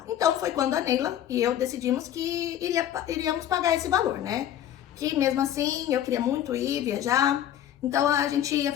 Então, foi quando a Neila e eu decidimos que iríamos pagar esse valor, né? Que mesmo assim, eu queria muito ir viajar, então a gente ia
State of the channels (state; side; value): quieter; right; 11.0 dB